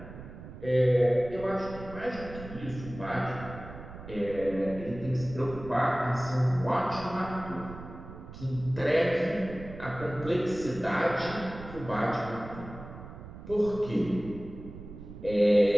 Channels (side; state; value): right; noise; rumble, 13 dB below the sound